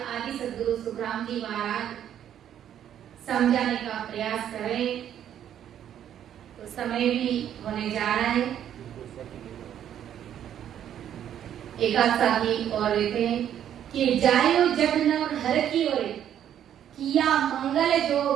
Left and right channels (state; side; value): quieter; left; 10.2 dB